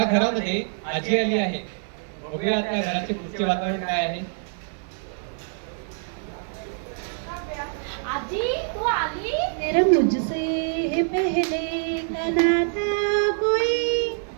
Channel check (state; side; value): silent; left; digital silence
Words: घरामध्ये आजी आली आहे. बघूया त्या घराचे पुढचे वातावरण काय आहे. आजी, तू आली? तेरा मुझसे है पहले का नाता कोई,